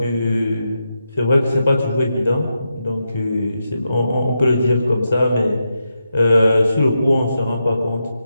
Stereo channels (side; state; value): both; inverted; correlation -0.86